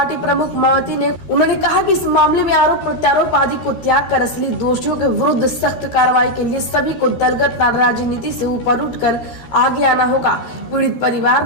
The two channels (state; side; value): late; right; 13 ms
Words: प्रमुख मायावती ने उन्होंने कहा कि इस मामले में आरोप प्रत्यारोप आदि को त्याग कर असली दोषियों के विरुद्ध सख्त कार्रवाई के लिए सभी को दलगत राजनीति से ऊपर उठकर आगे आना होगा। पीड़ित परिवार